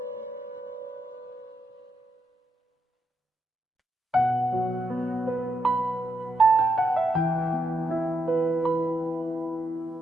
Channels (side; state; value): both; normal; correlation 0.81